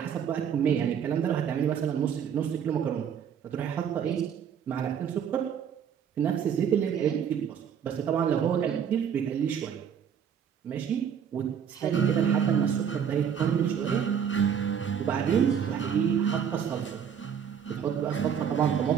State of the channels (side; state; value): left; quieter; 8.0 dB